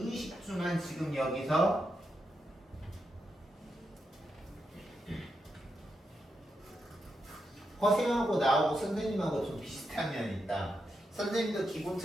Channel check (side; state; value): both; normal; correlation 0.84